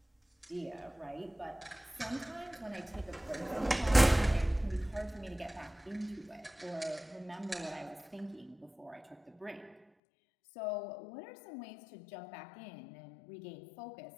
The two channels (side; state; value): right; drops out; at 9.8 s